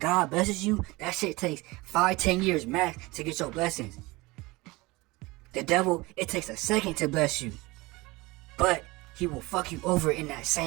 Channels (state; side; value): quieter; left; 22.4 dB